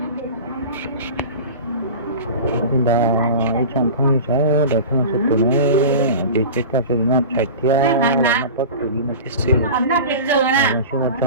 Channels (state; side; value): inverted; both; correlation -0.33